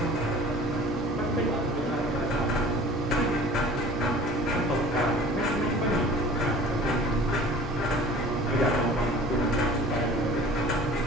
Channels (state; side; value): normal; both; correlation 0.46